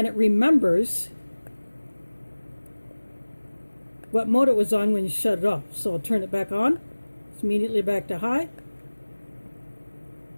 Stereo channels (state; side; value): inverted; both; correlation -1.00